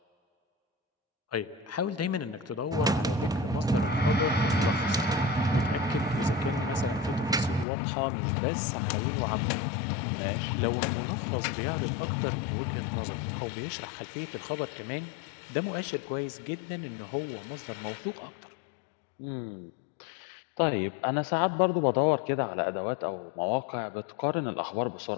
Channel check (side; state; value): right; drops out; at 7.7 s